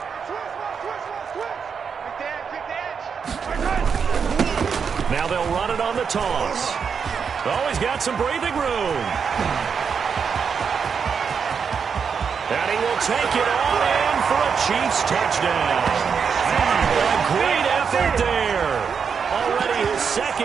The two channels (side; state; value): left; quieter; 6.3 dB